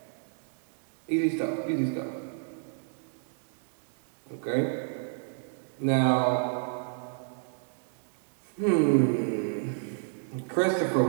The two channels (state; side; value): silent; left; digital silence